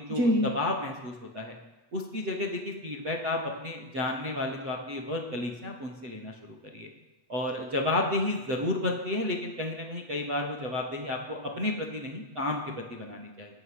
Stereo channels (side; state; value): left; late; 8.1 ms